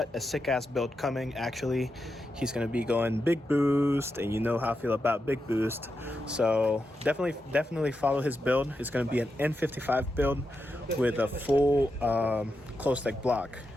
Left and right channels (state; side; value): normal; both; correlation 0.87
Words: a sick ass build coming. Actually, he's gonna be going big boost, and you know how I feel about big boost. So definitely follow his build. It's gonna be an N55 build with a full closed leg block.